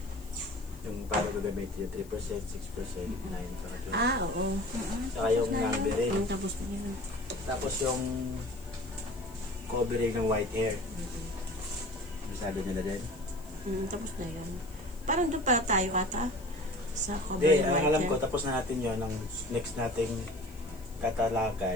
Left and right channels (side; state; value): left; noise; hiss, 23 dB below the sound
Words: Yung para gagamitin yung 3%, 6%, 9%, saka 2%. Ah, oo. Saka yung numbering. Ang tapos na yun. Tapos yung covering ng white hair. Sabi nila din. Tapos na yun. Parang doon para tayo ata. Sa cover Hindi, ng ang white alam hair. ko, tapos na natin yun. Ang next nating